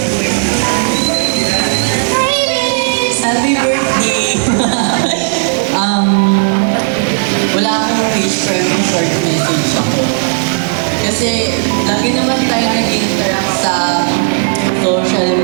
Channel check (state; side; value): silent; left; 57 dB below the other